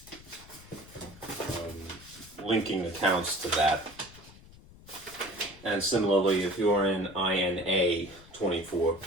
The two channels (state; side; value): noise; left; rumble, 21 dB below the sound